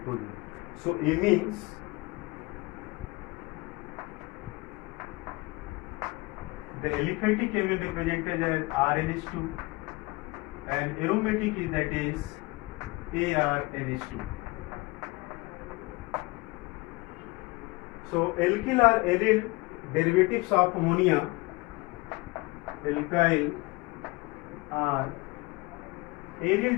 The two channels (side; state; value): right; quieter; 24.2 dB